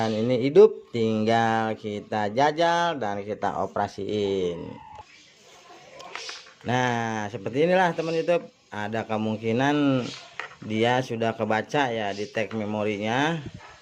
ini hidup, tinggal kita jajal dan kita operasiin. Nah seperti inilah teman YouTube, ada kemungkinan dia sudah kebaca ya di tag memorinya.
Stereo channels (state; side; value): identical; both; correlation 1.00